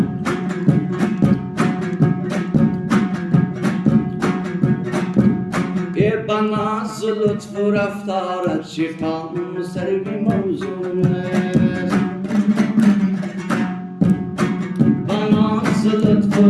بنا لطف و رفتارت شیطان سر بی موضوع است. بنا لطف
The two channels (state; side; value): identical; both; correlation 1.00